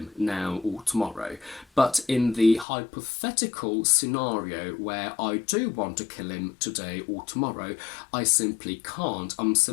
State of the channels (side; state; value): right; drops out; at 2.7 s